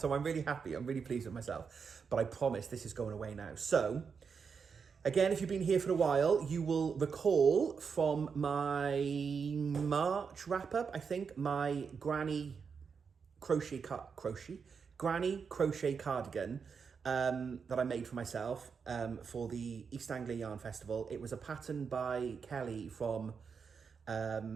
I'm really happy. I'm really pleased with myself. But I promise this is going away now. So, again, if you've been here for a while, you will recall from my March wrap-up, I think, my Granny crochet cardigan that I made for myself for the East Anglia Yarn Festival. It was a pattern by Kelly from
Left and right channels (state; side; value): quieter; left; 5.9 dB